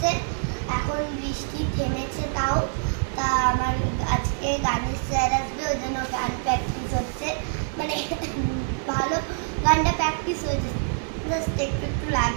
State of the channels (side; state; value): left; silent; digital silence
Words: এখন বৃষ্টি থেমেছে তাও। তা আমার আজকে গানের স্যার আসবে, ওই জন্য গান প্র্যাকটিস হচ্ছে। মানে ভালো গানটা প্র্যাকটিস হয়েছে, জাস্ট একটু একটু